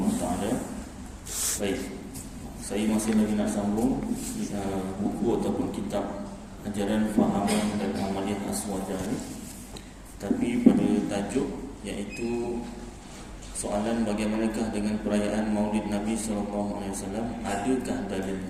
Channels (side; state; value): both; identical; correlation 1.00